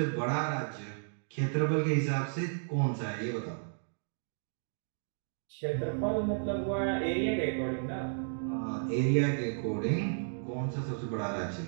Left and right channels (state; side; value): silent; left; digital silence